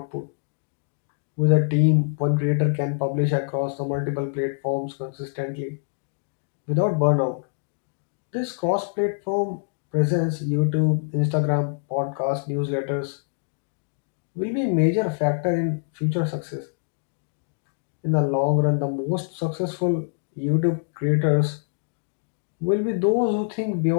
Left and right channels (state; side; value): silent; right; digital silence